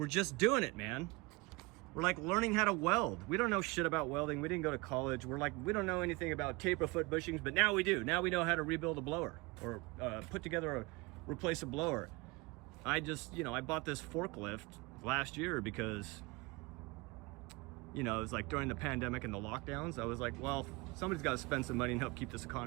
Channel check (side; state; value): left; quieter; 24.9 dB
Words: just doing it, man. We're like learning how to weld. We don't know shit about welding. We didn't go to college. We're like, we don't know anything about taper foot bushings, but now we do. Now we know how to rebuild a blower or replace a blower. I bought this forklift last year because, you know, it was like during the pandemic and the lockdowns. I was like, well, somebody's got to spend some money and help keep this